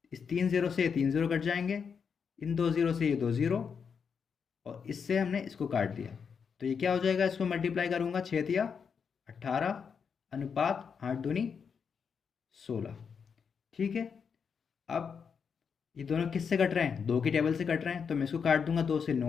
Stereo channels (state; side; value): quieter; right; 6.4 dB